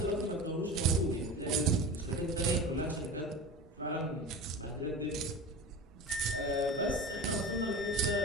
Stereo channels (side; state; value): both; normal; correlation 0.31